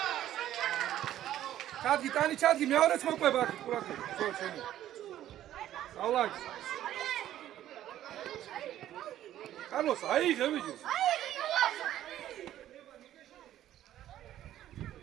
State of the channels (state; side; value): quieter; left; 12.4 dB